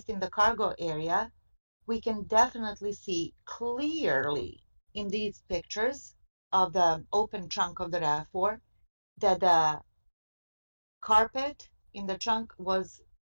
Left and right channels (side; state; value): both; inverted; correlation -1.00